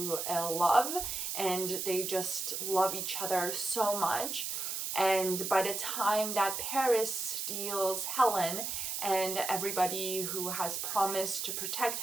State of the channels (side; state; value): right; noise; hiss, 3 dB below the sound